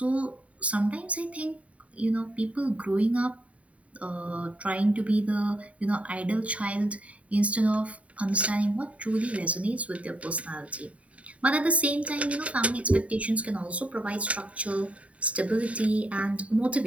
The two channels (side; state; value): left; late; 0.066 ms